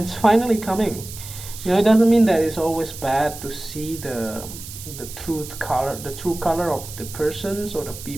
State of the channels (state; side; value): noise; right; hiss, 13 dB below the sound